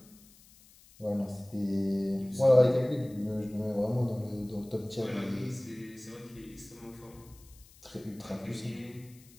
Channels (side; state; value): left; noise; hiss, 25 dB below the sound